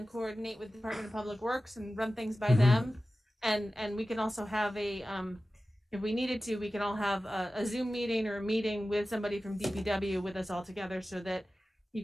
coordinate with the Department of Public Works and run things by them. And we can also have a, if we needed to, we can all have a Zoom meeting or a meeting with somebody from DPW with us all together, so that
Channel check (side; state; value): both; normal; correlation 0.95